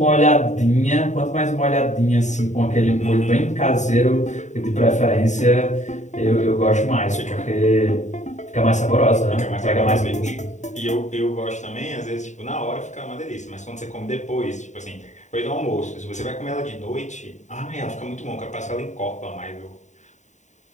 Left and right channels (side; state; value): right; late; 0.34 ms